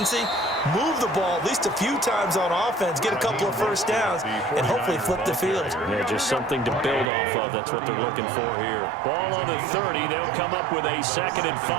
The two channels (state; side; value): drops out; left; at 7.1 s